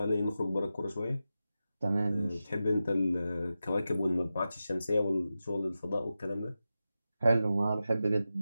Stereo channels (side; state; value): both; inverted; correlation -0.92